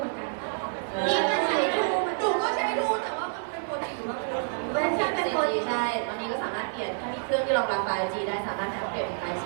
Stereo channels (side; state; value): left; silent; 56 dB below the other